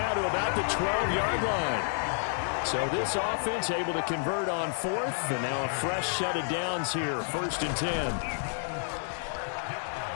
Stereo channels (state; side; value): silent; right; digital silence